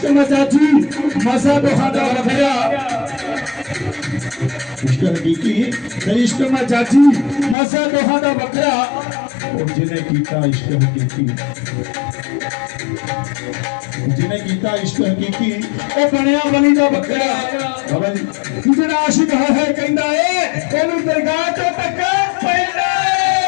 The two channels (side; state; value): right; drops out; at 7.6 s